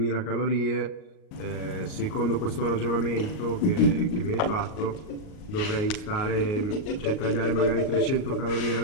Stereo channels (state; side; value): late; right; 38 ms